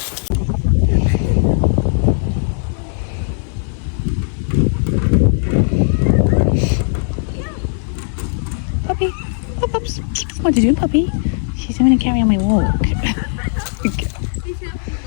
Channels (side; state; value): right; silent; 59 dB below the other